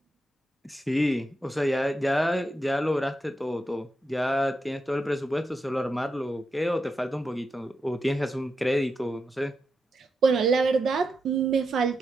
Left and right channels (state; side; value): normal; both; correlation 0.86